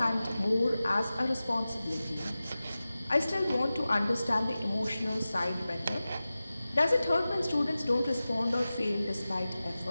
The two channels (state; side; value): inverted; both; correlation -0.96